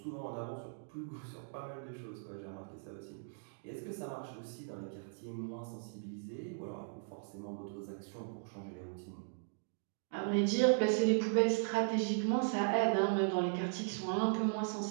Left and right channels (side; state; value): left; silent; digital silence